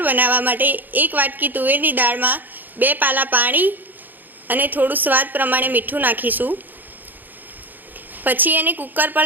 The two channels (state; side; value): late; left; 0.088 ms